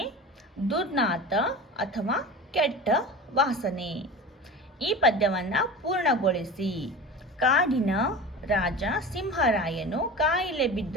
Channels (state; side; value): normal; both; correlation 0.33